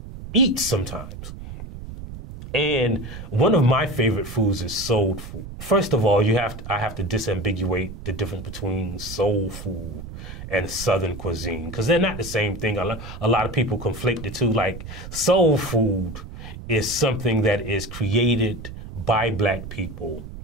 eat sometimes. And one of my favorite foods is soul food. First of all, I have to disambiguate the difference between soul food and Southern cuisine, because they're not the same thing. A lot of people conflate the two. Like, soul food is something that is created by Black people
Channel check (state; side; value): noise; right; rumble, 11 dB below the sound